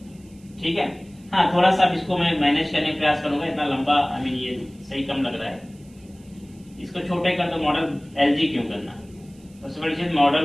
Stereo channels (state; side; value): noise; right; hiss, 29 dB below the sound